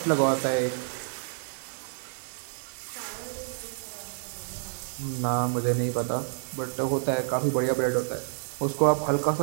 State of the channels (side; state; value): left; silent; digital silence